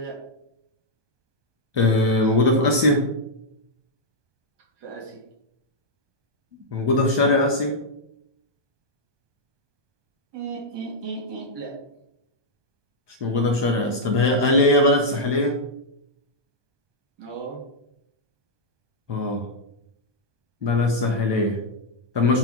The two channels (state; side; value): late; left; 1.2 ms